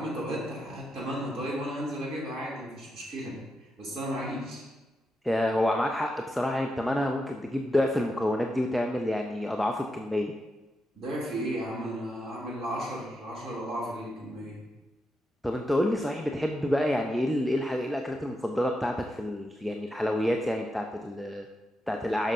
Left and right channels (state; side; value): normal; both; correlation 0.85